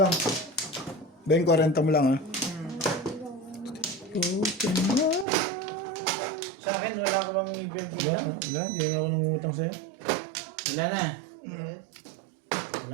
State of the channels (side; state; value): left; drops out; at 5.2 s